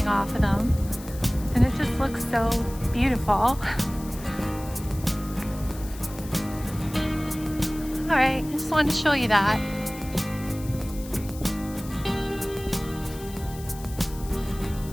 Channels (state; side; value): noise; left; hiss, 17 dB below the sound